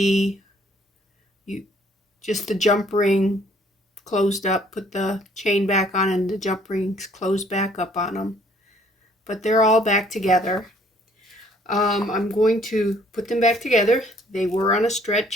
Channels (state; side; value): normal; both; correlation 0.61